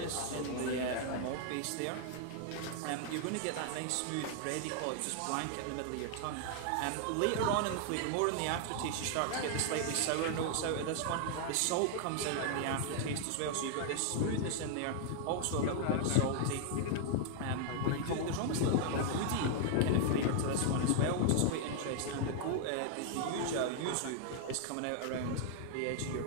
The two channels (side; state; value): both; different; correlation 0.00